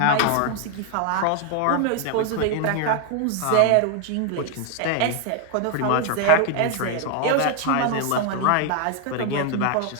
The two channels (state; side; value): different; both; correlation 0.00